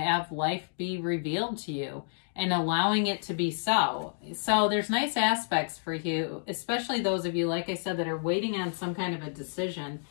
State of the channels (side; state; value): right; silent; digital silence